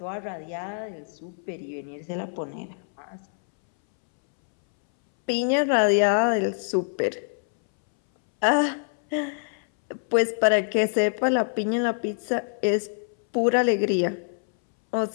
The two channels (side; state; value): right; silent; 62 dB below the other